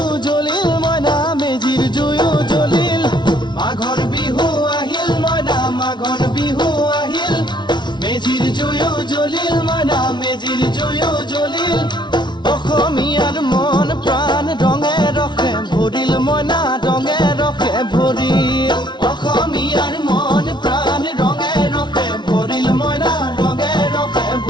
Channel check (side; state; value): right; late; 0.21 ms